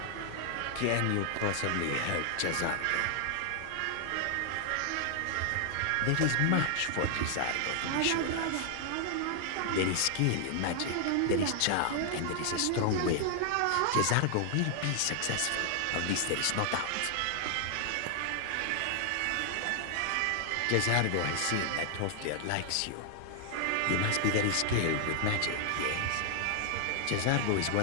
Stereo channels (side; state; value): both; different; correlation 0.00